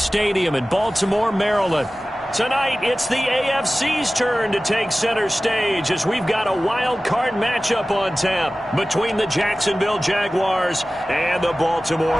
in Baltimore, Maryland. Tonight, it's the AFC's turn to take center stage as we've got a wild card matchup on tap between the Jacksonville Jaguars and the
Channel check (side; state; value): both; normal; correlation 0.97